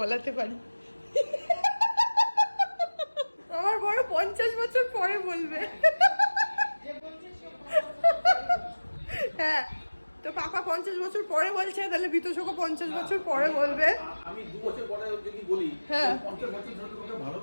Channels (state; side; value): inverted; both; correlation -1.00